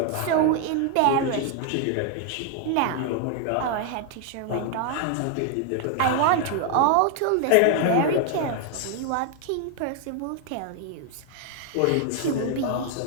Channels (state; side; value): different; both; correlation 0.00